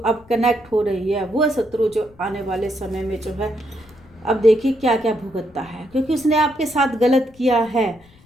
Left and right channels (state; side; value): noise; left; rumble, 27 dB below the sound